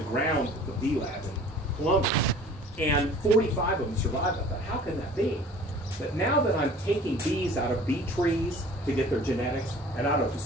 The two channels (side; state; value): both; normal; correlation 0.47